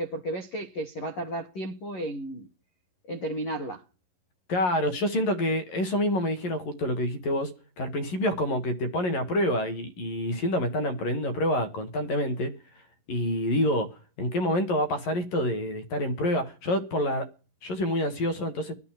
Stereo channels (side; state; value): right; late; 11 ms